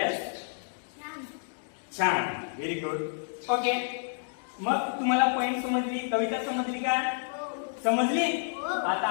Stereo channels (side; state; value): right; silent; digital silence